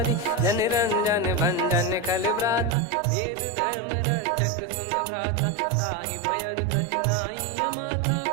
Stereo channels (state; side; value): drops out; left; at 2.8 s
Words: जन रंजन भंजन खल भ्राता, वेद धर्म रक्षक सुन भ्राता। ताहि भयरु तज नाई माथा,